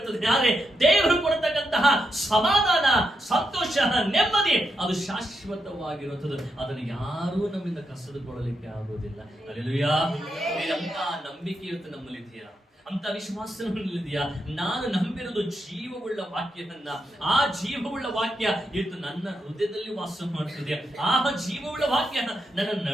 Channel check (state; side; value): normal; both; correlation 0.83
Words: ಆದರೆ ದೇವರು ಕೊಡತಕ್ಕಂತಹ ಸಮಾಧಾನ, ಸಂತೋಷ, ನೆಮ್ಮದಿ ಅದು ಶಾಶ್ವತವಾಗಿರುತ್ತದೆ. ಅದನ್ನು ಯಾರೂ ನಮ್ಮಿಂದ ಕಸಿದುಕೊಳ್ಳಲಿಕ್ಕೆ ಆಗುವುದಿಲ್ಲ. ಹಲ್ಲೆಲೂಯಾ. ಅಂತ ನಂಬಿಕೆ ಇವತ್ತು ನಮ್ಮಲ್ಲಿ ಇದೆಯಾ? ಅಂತ ವಿಶ್ವಾಸ ಇದೆಯಾ? ನಾನು ನಂಬಿರೋದು ಜೀವವುಳ್ಳ ವಾಕ್ಯವನ್ನ. ಆ ಜೀವವುಳ್ಳ ವಾಕ್ಯ ಇವತ್ತು ನನ್ನ ಹೃದಯದಲ್ಲಿ ವಾಸ ಮಾಡ್ತಿದೆ. ಆ ಜೀವವುಳ್ಳ ವಾಕ್ಯ ನನ್ನನ್ನು